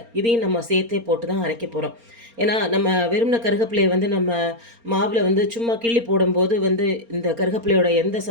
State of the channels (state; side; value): late; left; 4.3 ms